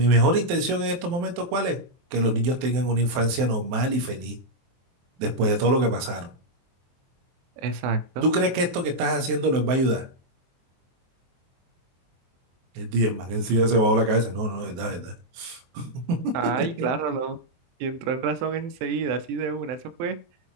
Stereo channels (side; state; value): left; late; 23 ms